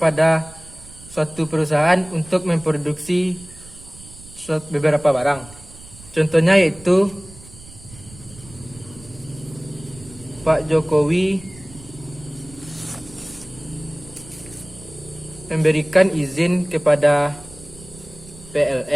suatu perusahaan untuk memproduksi beberapa barang. Contohnya yaitu Pak Jokowi memberikan izin kepada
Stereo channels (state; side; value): noise; right; rumble, 20 dB below the sound